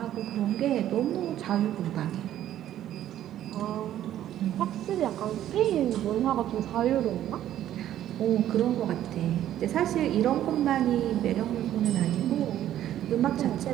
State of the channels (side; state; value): left; quieter; 12.0 dB